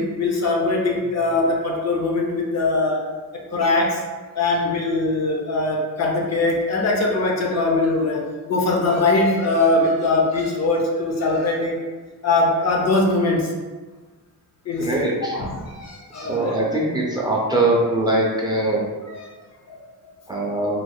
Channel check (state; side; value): normal; both; correlation 0.04